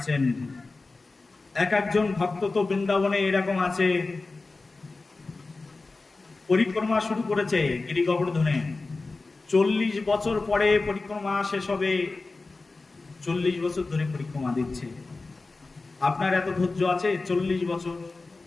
একজন ভক্ত তো বৃন্দাবনে এরকম আছে, পরিক্রমা শুরু করেছে গিরি গোবর্ধনে, 40 বছর পরে পরিক্রমা শেষ হবে, 40 বছর ধরে পরিক্রমা দিচ্ছে। আপনার এত ধৈর্য আছে?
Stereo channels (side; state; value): right; quieter; 3.6 dB